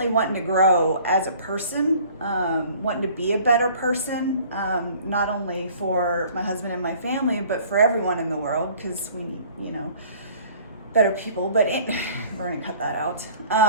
wanting to grow as a person, wanting to be a better person, not only for my husband and my family, but for everyone in the world, because we need, better people, but we're gonna cut that out.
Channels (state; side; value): inverted; both; correlation -0.51